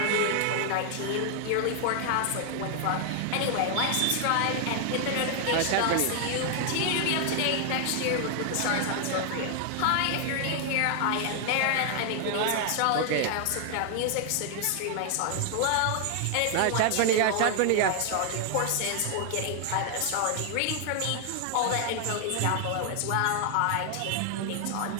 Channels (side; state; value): both; different; correlation 0.00